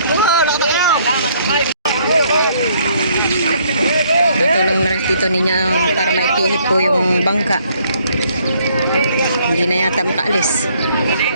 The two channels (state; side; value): inverted; both; correlation -0.66